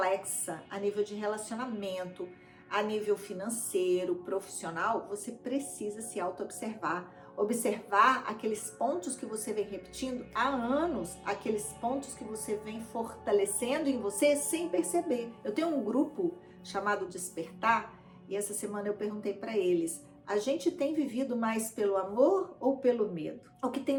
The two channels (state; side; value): identical; both; correlation 1.00